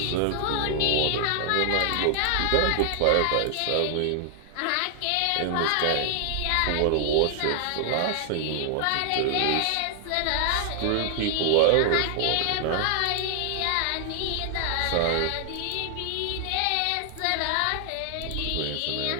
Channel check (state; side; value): different; both; correlation 0.00